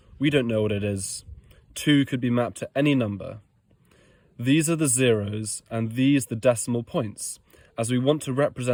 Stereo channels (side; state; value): both; identical; correlation 1.00